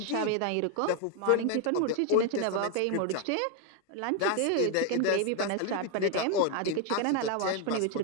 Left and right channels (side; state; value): both; different; correlation 0.01